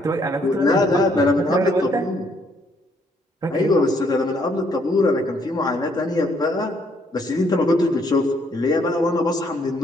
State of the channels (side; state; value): both; normal; correlation 0.69